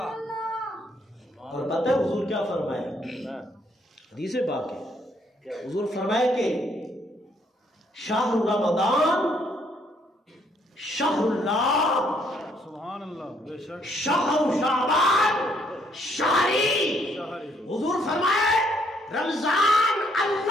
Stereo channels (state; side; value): normal; both; correlation 0.69